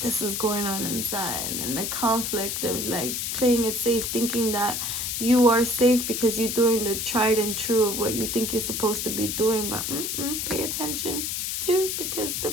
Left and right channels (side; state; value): left; noise; hiss, 2 dB below the sound